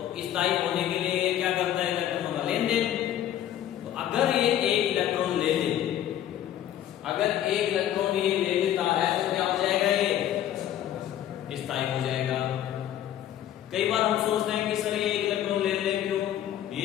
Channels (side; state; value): right; quieter; 11.5 dB